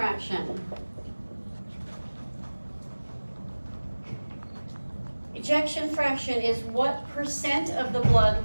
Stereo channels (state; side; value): inverted; both; correlation -1.00